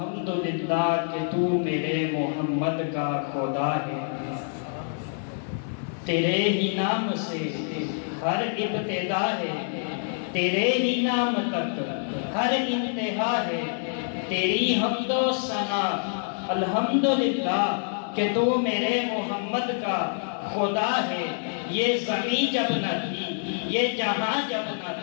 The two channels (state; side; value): silent; right; digital silence